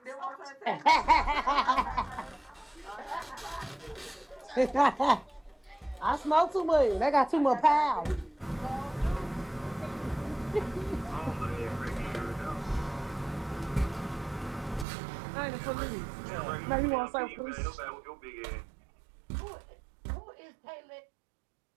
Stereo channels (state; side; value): drops out; left; at 14.9 s